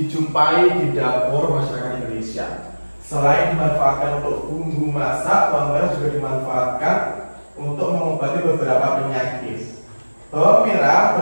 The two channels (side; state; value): both; inverted; correlation -1.00